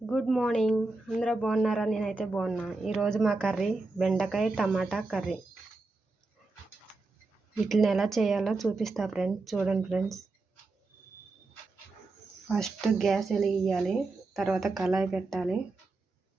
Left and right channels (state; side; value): quieter; left; 3.5 dB